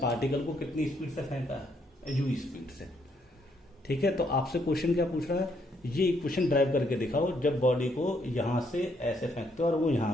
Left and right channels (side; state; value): both; normal; correlation 0.72